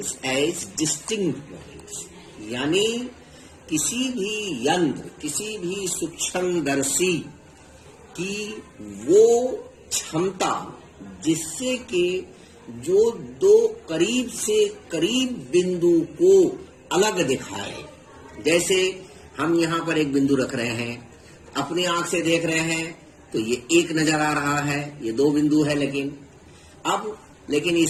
as distinct points। यानी किसी भी यंत्र, किसी भी सूक्ष्मदर्शी की वो क्षमता जिससे कि जो दो करीब से करीब बिंदु को अलग दिखाए। जैसे हम यहाँ पर एक बिंदु रख रहे हैं, अपनी आंख से देख रहे हैं तो ये एक नजर आ रहा है, ये 2 बिंदु है, लेकिन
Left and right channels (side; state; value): both; identical; correlation 1.00